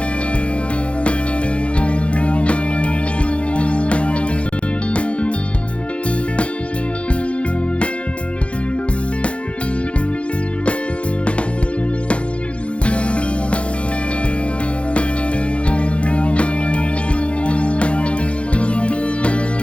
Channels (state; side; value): late; right; 0.061 ms